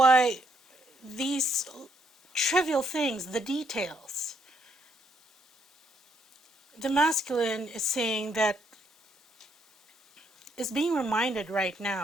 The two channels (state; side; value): normal; both; correlation 0.73